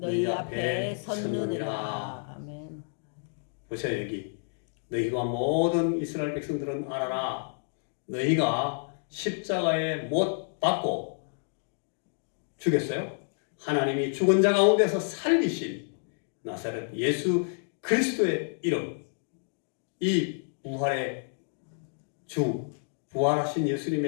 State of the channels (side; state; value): right; silent; digital silence